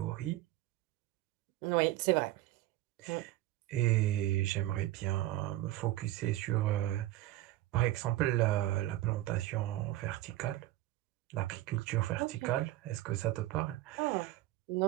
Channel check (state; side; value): quieter; left; 15.8 dB